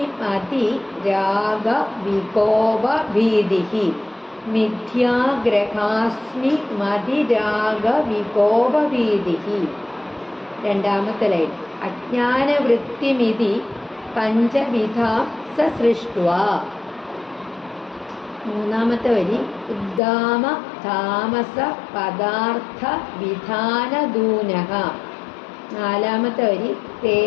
മതി രാഗ വികോപ ഭീതിഹി. മിഥ്യാഗ്രഹാസ്മി മതി രാഗ വികോപ ഭീതിഹി. രണ്ടാമത്തെ ലൈൻ. അജ്ഞാനവൃത്തിമിതി പഞ്ചവിധാം സസൃഷ്ട്വാ. മൂന്നാമത്തെ വരി. ഉദ്ദാമ താമസ പദാർത്ഥ വിധാനദൂനഃ. നാലാമത്തെ വരി.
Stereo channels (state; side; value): drops out; right; at 20.0 s